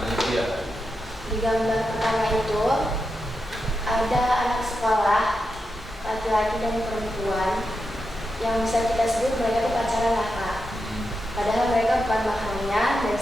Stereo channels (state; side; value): normal; both; correlation 0.88